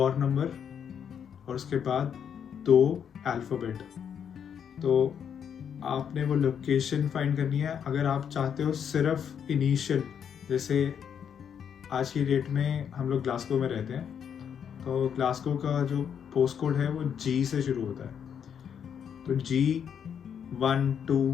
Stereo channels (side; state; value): right; quieter; 8.0 dB